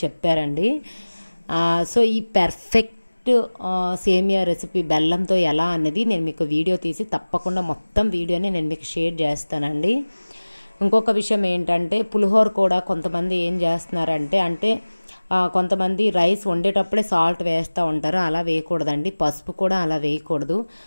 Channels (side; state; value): both; inverted; correlation -1.00